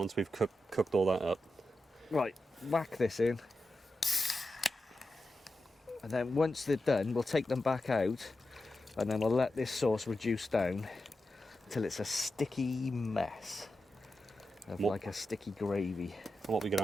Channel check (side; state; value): both; normal; correlation 0.90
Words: we've cooked all that up? Right, whack this in. And then once they're done, we'll take them back out and then we'll let this sauce reduce down until it's a sticky mess of like a sticky gravy. What are we going to